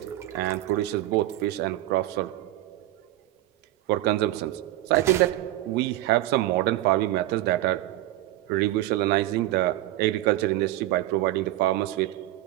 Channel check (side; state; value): left; quieter; 15.8 dB